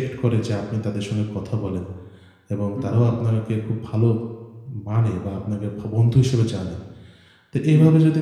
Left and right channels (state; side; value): identical; both; correlation 1.00